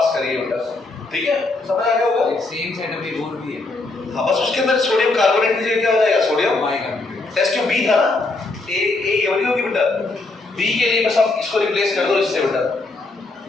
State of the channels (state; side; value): quieter; right; 3.3 dB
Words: करेगी बेटा, ठीक है। समझ आ गया होगा? सेम सेटअप एक और भी है। हाँ, बस उसके अंदर सोडियम कार्बोनेट की जगह क्या हो जाएगा? Sodium bicarbonate. Test tube B था ना, ए वाली होगी बेटा। बी के लिए बस आप इसको रिप्लेस कर दो इससे बेटा,